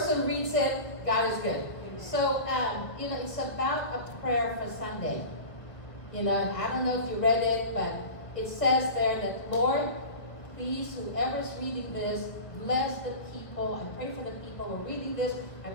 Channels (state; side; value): late; right; 1.4 ms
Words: reads it, God is good. So, it's about a prayer for Sunday. And I don't know if you read it, but it says there that, Lord, please, whoever's reading this, bless the people. I pray for the people who are reading this. I